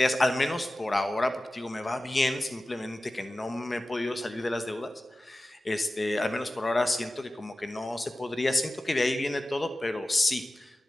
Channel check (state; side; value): normal; both; correlation 0.95